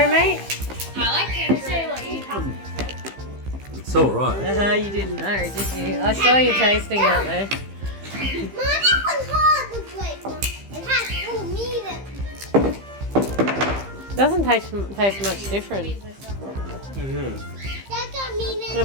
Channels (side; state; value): left; late; 15 ms